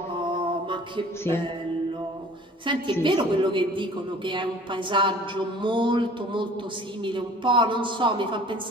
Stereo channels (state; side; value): normal; both; correlation 0.48